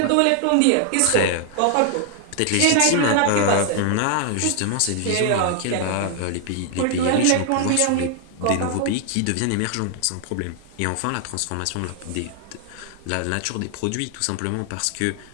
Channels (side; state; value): both; different; correlation 0.00